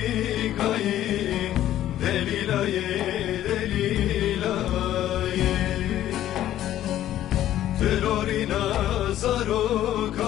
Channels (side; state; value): right; quieter; 12.6 dB